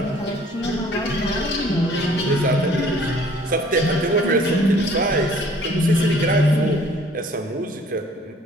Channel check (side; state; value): both; normal; correlation 0.55